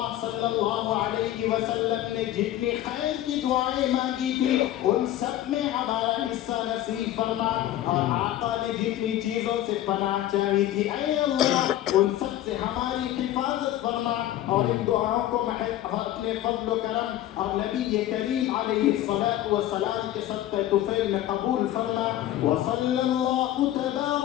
صلی اللہ علیہ وسلم نے جتنی خیر کی دعائیں مانگی تھی ان سب میں ہمارا حصہ نصیب فرما. اور آقا نے جتنی چیزوں سے پناہ چاہی تھی اے اللہ ان سب سے ہماری حفاظت فرما اور ان دعاؤں کو اپنے فضل و کرم اور نبی کریم علیہ الصلاۃ والسلام کے صدقہ طفیل میں قبول فرما. وصلی اللہ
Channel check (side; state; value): right; quieter; 13.3 dB